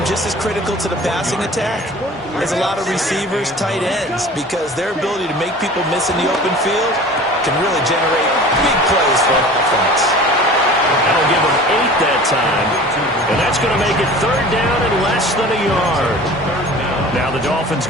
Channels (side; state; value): both; normal; correlation 0.41